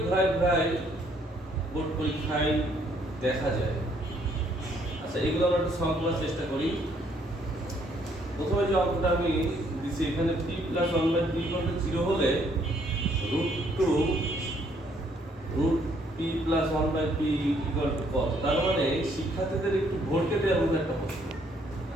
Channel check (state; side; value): normal; both; correlation 0.67